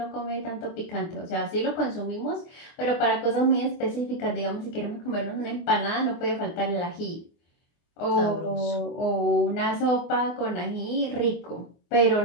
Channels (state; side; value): late; right; 24 ms